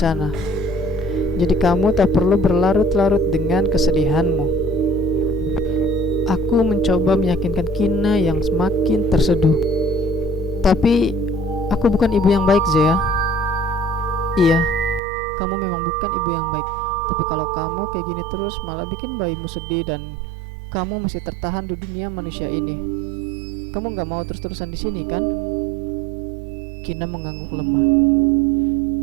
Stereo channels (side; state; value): left; drops out; at 15.0 s